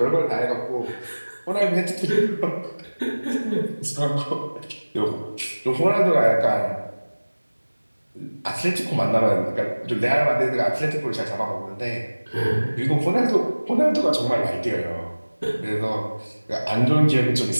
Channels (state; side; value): inverted; both; correlation -1.00